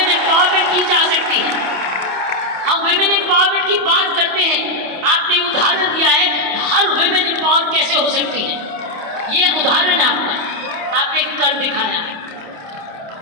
एम्पावरमेंट की जा सकती है। हम विमेन एम्पावरमेंट की बात करते हैं, आपने उदाहरण दिया है हर विमेन एम्पावर कैसे हो सकती है। ये उदाहरण है आपका, आपने कर दिखाया है।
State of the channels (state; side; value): late; left; 28 ms